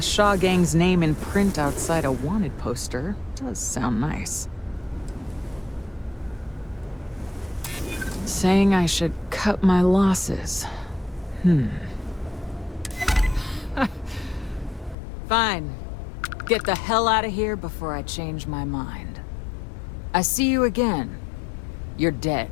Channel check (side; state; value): right; drops out; at 15.0 s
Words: Shaw Gang's name in print outside a wanted poster does sound nice. Saying I should cut my losses. Fine. Get the hell out of here before I change my mind. I see you again. You're dead.